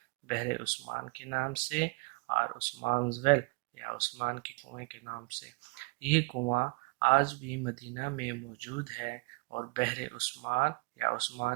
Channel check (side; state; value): left; quieter; 29.1 dB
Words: عثمان کے نام سے اور عثمان's well یا عثمان کے کنویں کے نام سے یہ کنواں آج بھی مدینہ میں موجود ہے اور بحر عثمان یا